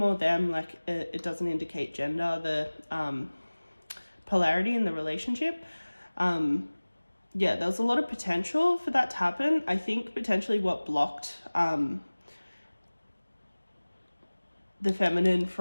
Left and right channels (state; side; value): inverted; both; correlation -1.00